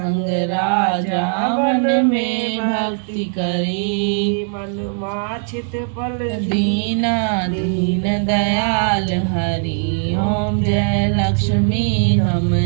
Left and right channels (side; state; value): left; silent; 67 dB below the other